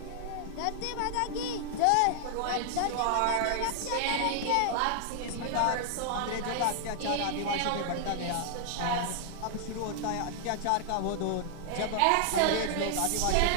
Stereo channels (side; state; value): both; different; correlation -0.01